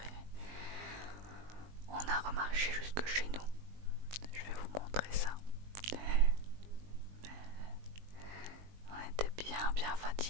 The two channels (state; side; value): late; left; 20 ms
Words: et on a remarché jusque chez nous. Je vais vous montrer ça. On était bien